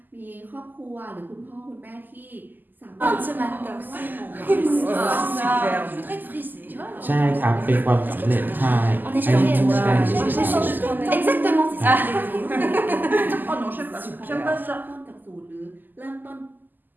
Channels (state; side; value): late; left; 0.088 ms